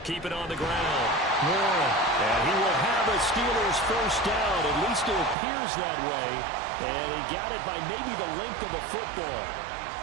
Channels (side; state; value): left; drops out; at 5.4 s